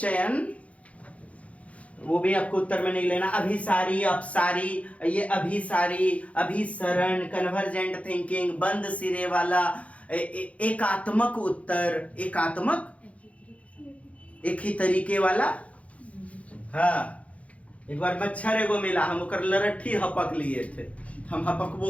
वो भी आपको उत्तर में नहीं लेना। अभिसारी, अपसारी, ये अभिसारी, अभिसरण, कन्वर्जेंट थिंकिंग, बंद सिरे वाला, एकात्मक उत्तर, एकात्मक, एक ही तरीके वाला। हाँ, एक बार मच्छर एगो मिला, हम ओकर लरट्ठी हपक लिए थे, हम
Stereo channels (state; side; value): late; right; 0.065 ms